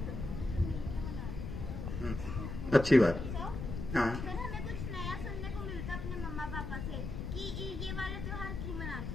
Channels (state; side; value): noise; left; rumble, 5 dB below the sound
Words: अच्छी बात। हाँ, हमें कुछ नया सुनने को मिलता अपने मम्मा पापा से कि ये वाले त्योहार क्यों